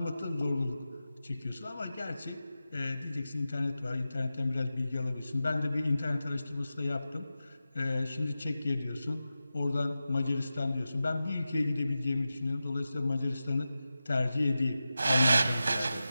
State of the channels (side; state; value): both; inverted; correlation -0.93